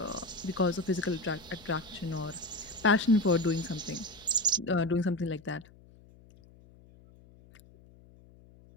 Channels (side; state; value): left; noise; hum, 24 dB below the sound